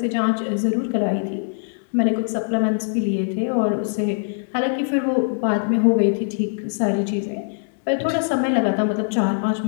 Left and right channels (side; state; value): right; silent; 64 dB below the other